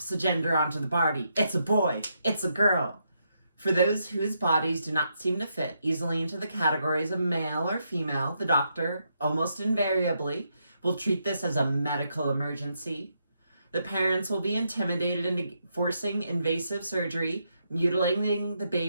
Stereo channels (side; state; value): both; inverted; correlation -0.80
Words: a gender onto the body. It's a boy. It's a girl. For those whose bodies do not seem to fit easily into the categories of male or female, the doctor, almost invariably, will treat this as a medical emergency. The parents will be intimidated into forcing invasive surgery, mutilating the